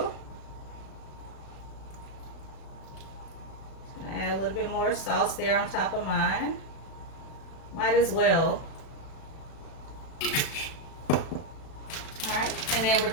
Add a little bit more sauce there on top of mine. Might as well. Alright, and then we're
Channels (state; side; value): late; right; 36 ms